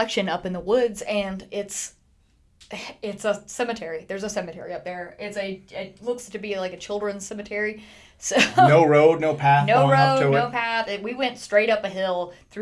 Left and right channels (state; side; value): identical; both; correlation 1.00